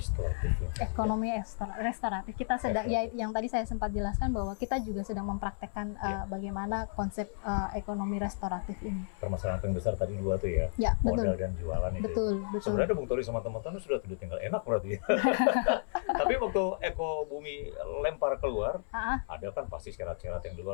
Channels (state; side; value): silent; right; 56 dB below the other